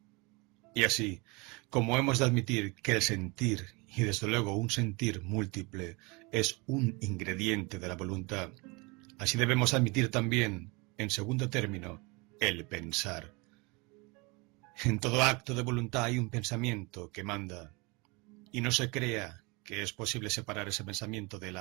Y así, como hemos de admitir que el sentir, y desde luego un sentir múltiple, es un ingrediente de la voluntad, así debemos admitir también, en segundo término, el pensar. En todo acto de voluntad hay un pensamiento que manda, y no se crea que es posible separar ese pensamiento de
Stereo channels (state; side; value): quieter; left; 27.5 dB